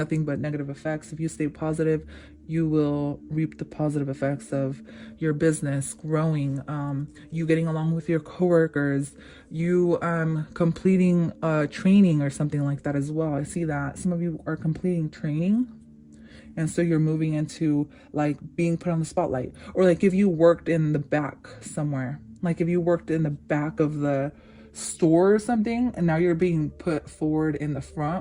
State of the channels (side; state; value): both; identical; correlation 1.00